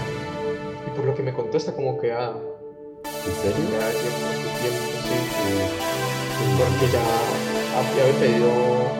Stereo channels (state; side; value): identical; both; correlation 1.00